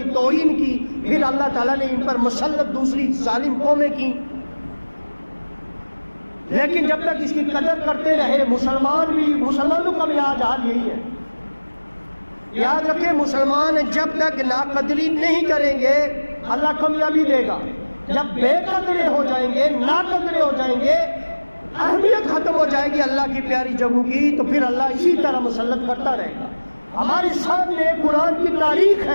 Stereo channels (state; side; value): inverted; both; correlation -1.00